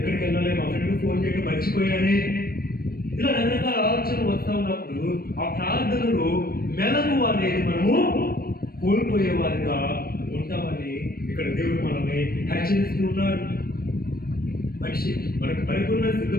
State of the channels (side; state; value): right; late; 0.44 ms